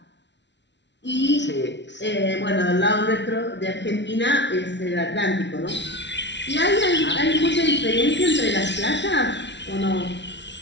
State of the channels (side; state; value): right; late; 0.51 ms